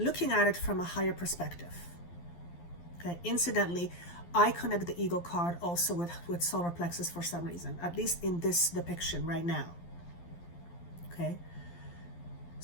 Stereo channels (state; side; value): late; right; 12 ms